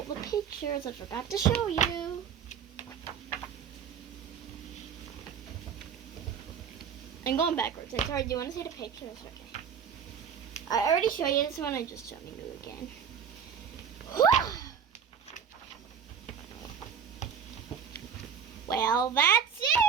the pictures I forgot to show you. I'm going backwards. I'm sorry, do you want to see the pictures? Okay. I already showed you this one, I'm just showing you again. Well, that's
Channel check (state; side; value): quieter; left; 7.5 dB